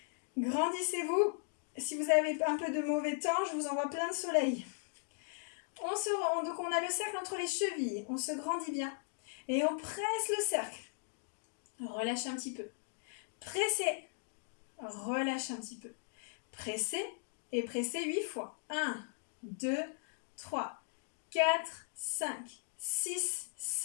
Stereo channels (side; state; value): right; silent; digital silence